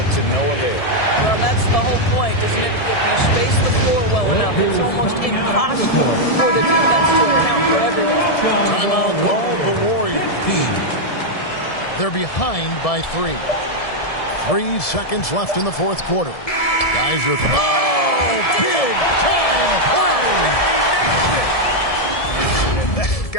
to no avail. Well, that's the whole point, isn't it? If you space the floor well enough, it's almost impossible for the defense to account for everyone. Timeout called the Warriors. They're behind by 3. 3 seconds left in the fourth quarter. Guys are... big time play!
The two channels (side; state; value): right; late; 1.7 ms